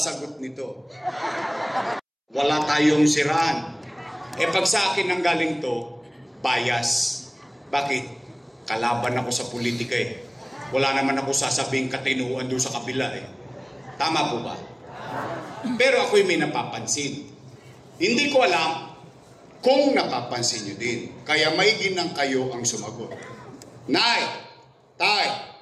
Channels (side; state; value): both; identical; correlation 1.00